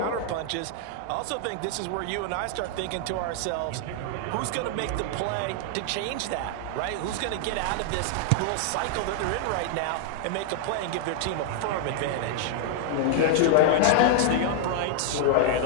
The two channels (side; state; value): both; different; correlation 0.00